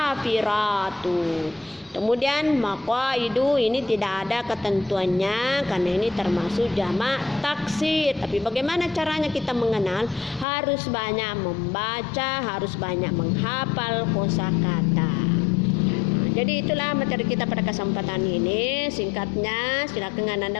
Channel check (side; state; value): right; drops out; at 10.5 s